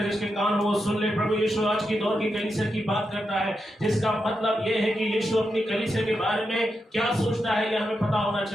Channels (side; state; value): both; normal; correlation 0.86